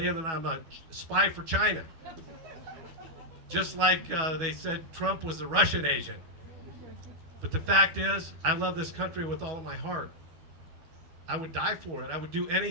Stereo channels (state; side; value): late; left; 12 ms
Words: that I'm a spy for China. Just like they said Trump was a Russian agent. But the fact is, I love this country with all of my heart. I would die for it. I would do